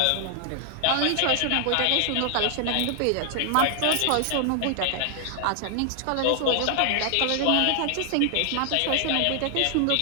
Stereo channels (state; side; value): different; both; correlation 0.00